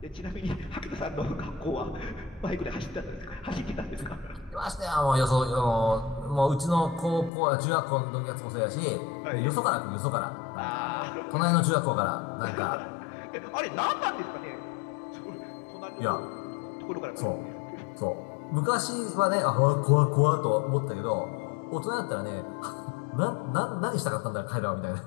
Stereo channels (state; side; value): drops out; right; at 7.3 s